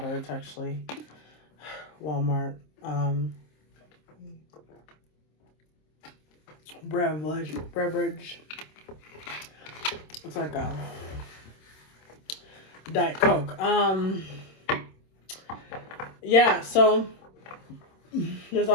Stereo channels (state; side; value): late; right; 26 ms